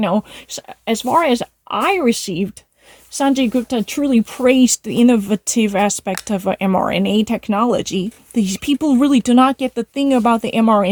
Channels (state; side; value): identical; both; correlation 1.00